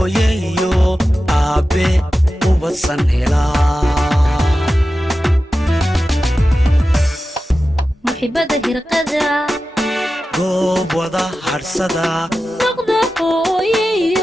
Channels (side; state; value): both; normal; correlation 0.93